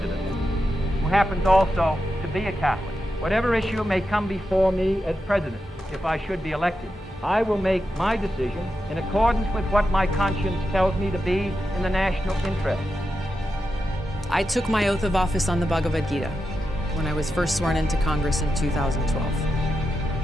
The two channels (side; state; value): both; normal; correlation 0.88